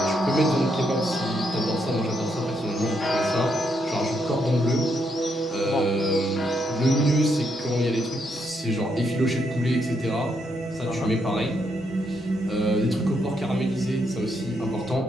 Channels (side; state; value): both; normal; correlation 0.77